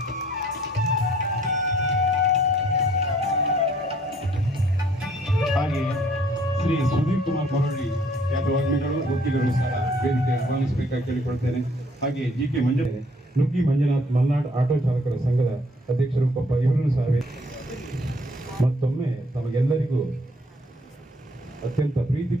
ಹಾಗೆ ಶ್ರೀ ಸುಧೀರ್ ಕುಮಾರ್ ಮರಳಿ ಖ್ಯಾತವಾಗ್ಮಿಗಳು ವಕೀಲರು ಸಹ ವೇದಿಕೆ ಆಹ್ವಾನಿಸಬೇಕಾಗಿ ಕೇಳಿಕೊಳ್ತೇನೆ. ಹಾಗೆ ಜಿ.ಕೆ. ನುಗ್ಗಿ ಮಂಜುನಾಥ್ ಮಲ್ನಾಡ್ ಆಟೋ ಚಾಲಕರ ಸಂಘದ ಅಧ್ಯಕ್ಷರು ಕೊಪ್ಪ ಇವರನ್ನು ಸಹ ಮತ್ತೊಮ್ಮೆ ತಮಗೆಲ್ಲರಿಗೂ ಅತ್ಯಂತ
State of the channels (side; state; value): both; normal; correlation 0.61